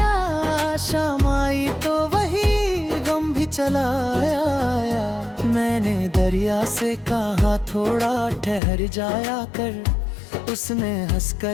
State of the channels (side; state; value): right; drops out; at 8.6 s